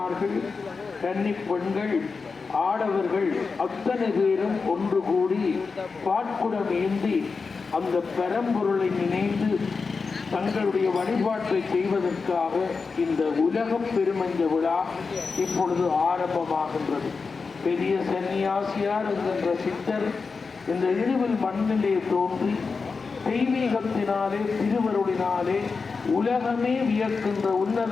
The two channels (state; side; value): quieter; right; 4.7 dB